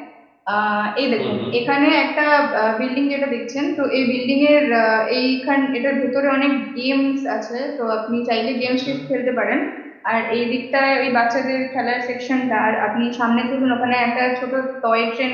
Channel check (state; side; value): identical; both; correlation 1.00